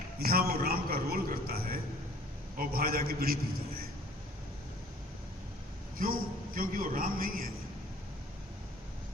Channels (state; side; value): normal; both; correlation 0.53